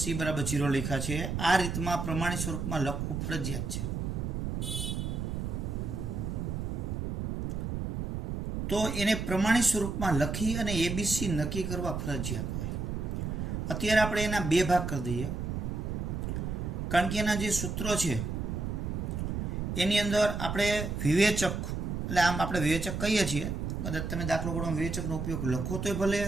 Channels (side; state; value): right; noise; rumble, 3 dB below the sound